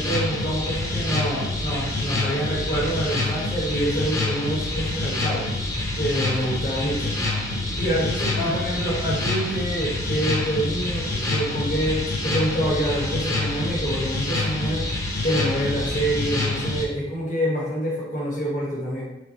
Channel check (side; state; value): both; normal; correlation 0.54